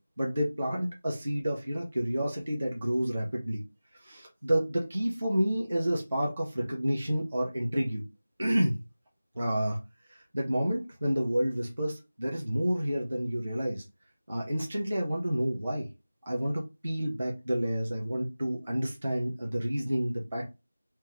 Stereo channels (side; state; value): both; inverted; correlation -0.97